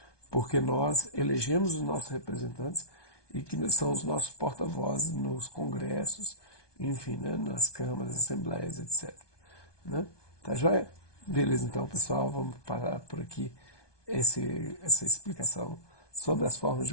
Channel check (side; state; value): right; late; 1.2 ms